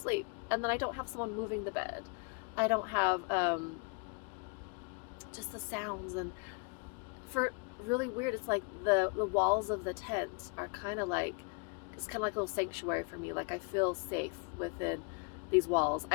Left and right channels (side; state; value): right; quieter; 34.1 dB